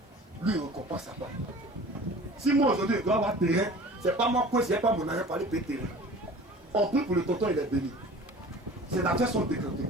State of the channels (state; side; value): normal; both; correlation 0.43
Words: lui récompense sa part. Si moi aujourd'hui je dois avoir terrain, c'est pas moi que c'est pas mon argent pour aller payer terrain. On prie pour le tonton, il est béni. Ses affaires sont décantées.